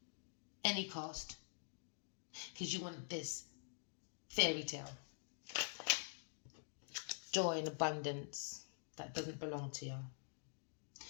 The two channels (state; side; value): silent; right; digital silence